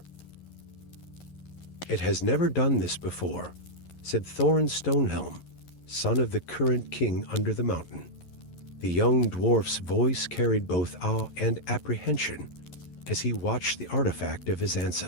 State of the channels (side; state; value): right; late; 11 ms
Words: "It has never done this before," said Thorin Stonehelm, son of the current king under the mountain. The young dwarf's voice carried both awe and apprehension as he watched the artifact of his